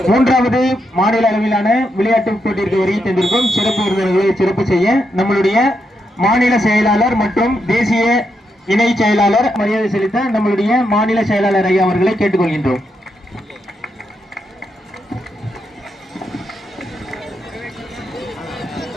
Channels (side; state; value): both; normal; correlation 0.82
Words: மூன்றாவது மாநில அளவிலான விளையாட்டுப் போட்டிற்கு வருகை தந்திருக்கும் சிறப்பு விருந்தினர்களை சிறப்பு செய்ய நம்மளுடைய மாநில செயலாளர் மற்றும் தேசிய இணை செயலாளர் மரியாதை செலுத்த நம்மளுடைய மாநில செயலாளர் ஐயா அவர்களை கேட்டுக்கொள்கின்றோம்.